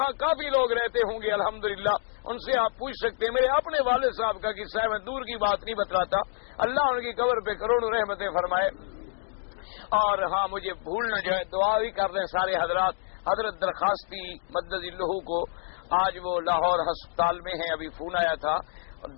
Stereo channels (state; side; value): silent; right; digital silence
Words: کافی لوگ رہتے ہوں گے الحمدللہ، ان سے آپ پوچھ سکتے ہیں۔ میرے اپنے والد صاحب کا قصہ ہے، میں دور کی بات نہیں بتلاتا، اللہ ان کی قبر پہ کروڑوں رحمتیں فرمائے۔ اور ہاں مجھے بھول نہ جائے، دعا بھی کر دیں سارے حضرات۔ حضرت درخواستی مدد اللہ کو آج وہ لاہور ہسپتال میں ہیں، ابھی فون آیا تھا،